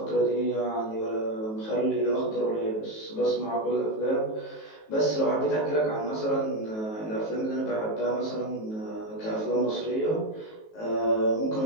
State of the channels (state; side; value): late; right; 19 ms